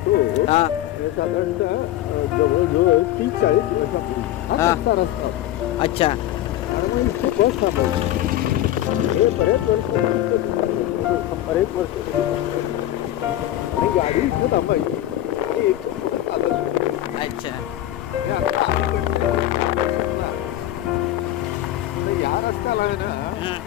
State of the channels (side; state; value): right; quieter; 13.6 dB